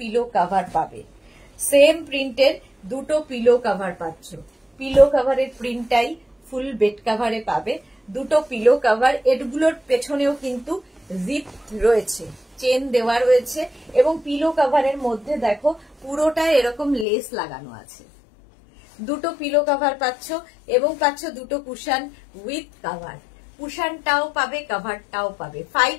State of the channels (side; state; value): right; drops out; at 17.1 s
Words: কভার পাবে, সেম প্রিন্টের দুটো পিলো কভার পাচ্ছ। পিলো কভারের প্রিন্টটাই ফুল বেড কভারে পাবে। দুটো পিলো কভার, এগুলোর পেছনেও কিন্তু জিপ রয়েছে, চেন দেওয়া রয়েছে, এবং পিলো কভারের মধ্যে দেখো পুরোটাই এরকম লেস লাগানো আছে। দুটো পিলো কভার পাচ্ছ, এবং পাচ্ছ দুটো কুশন উইথ কভার। কুশনটাও পাবে, কভারটাও পাবে। 5